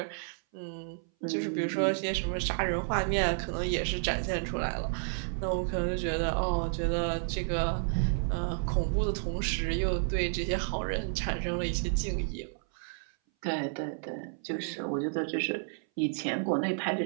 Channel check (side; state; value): left; silent; 57 dB below the other